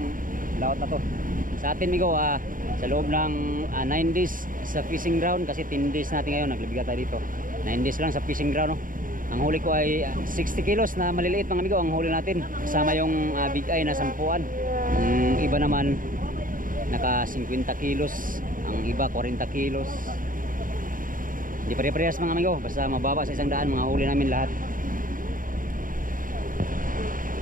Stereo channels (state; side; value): late; left; 0.40 ms